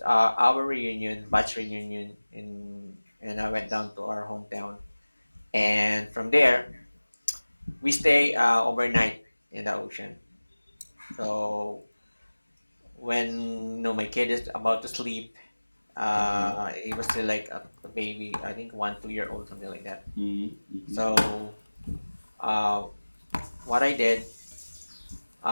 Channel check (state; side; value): inverted; both; correlation -1.00